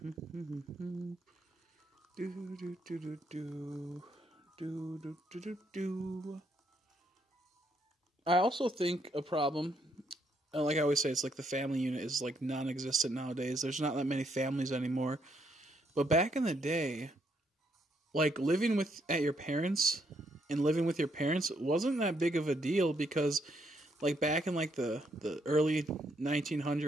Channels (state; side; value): normal; both; correlation 0.73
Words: I also think a problem, like I always say, it's like the family unit is like non-existent nowadays. There's not that many families anymore. But back in the day, like living at your parents and living with your parents wasn't that big of a deal, because like back in like the early